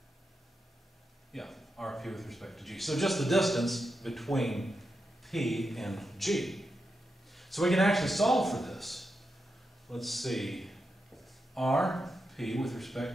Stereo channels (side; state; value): both; normal; correlation 0.87